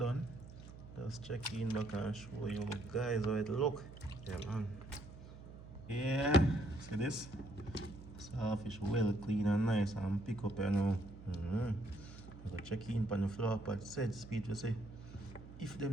just check in back and show you guys how it look. Yeah man. Yeah, see this? Saltfish well clean and nice and pick up you know. I go check in on the floor pot set speed to say if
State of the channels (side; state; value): right; noise; hum, 15 dB below the sound